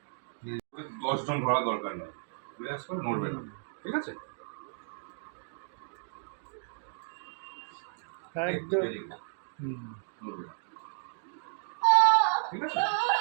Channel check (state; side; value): silent; left; digital silence